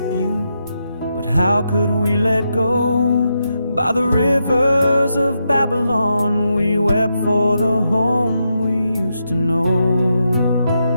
you, but how could we let go? By the rivers of Babylon we wept for the home we used to know.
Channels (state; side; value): inverted; both; correlation -0.84